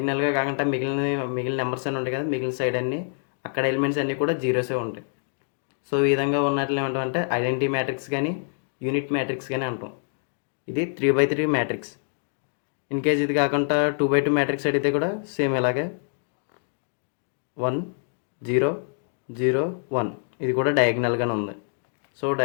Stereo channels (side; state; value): right; silent; digital silence